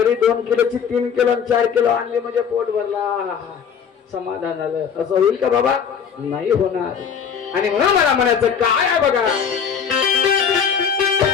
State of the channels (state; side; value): quieter; right; 7.2 dB